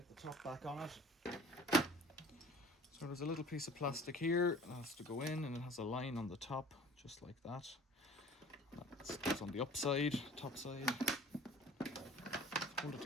the top back on it. So there's a little piece of plastic here that has to go in, and it has a line on the top, just like that. That goes on the upside, top side. Hold it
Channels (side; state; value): both; normal; correlation 0.46